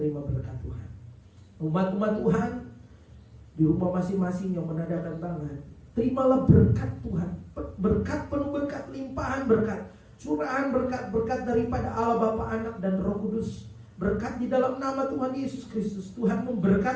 berkat Tuhan. Umat-umat Tuhan di rumah masing-masing yang menandakan tangan, terimalah berkat Tuhan. Berkat penuh berkat, limpahan berkat, curahan berkat daripada Allah Bapa, Anak dan Roh Kudus. Berkat di dalam nama Tuhan Yesus Kristus. Tuhan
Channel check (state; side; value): identical; both; correlation 1.00